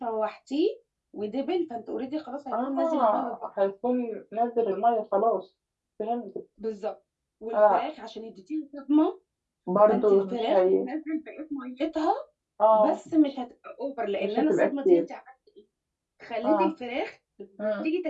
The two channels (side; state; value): both; identical; correlation 1.00